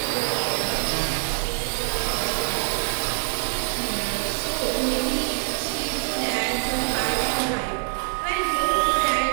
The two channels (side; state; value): left; silent; 59 dB below the other